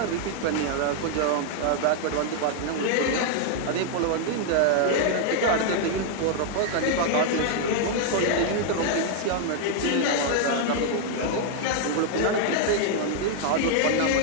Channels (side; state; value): both; different; correlation 0.00